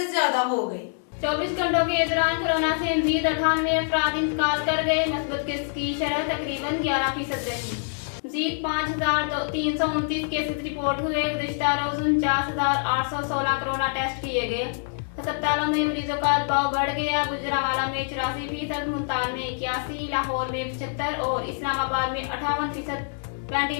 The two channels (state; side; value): silent; right; digital silence